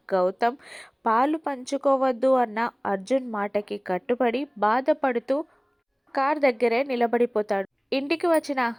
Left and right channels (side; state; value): both; identical; correlation 1.00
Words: గౌతమ్ పాలు పంచుకోవద్దు అన్న అర్జున్ మాటకి కట్టుబడి బాధపడుతూ కార్ దగ్గరే నిలబడిపోతాడు. ఇంటికి వచ్చిన